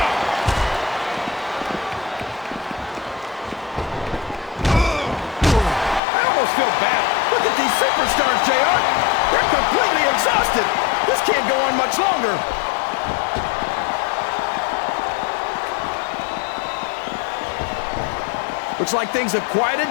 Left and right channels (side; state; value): right; drops out; at 6.0 s